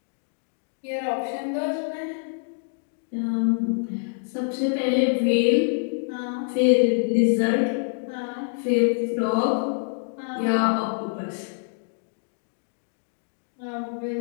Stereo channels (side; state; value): right; silent; digital silence